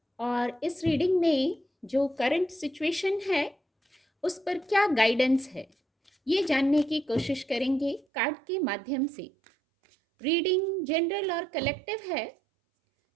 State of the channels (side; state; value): left; drops out; at 8.1 s